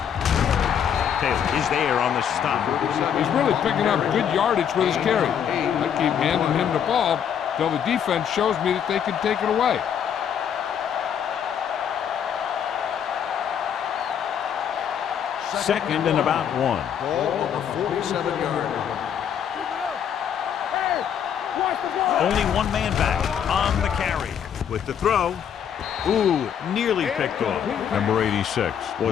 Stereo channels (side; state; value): right; quieter; 8.5 dB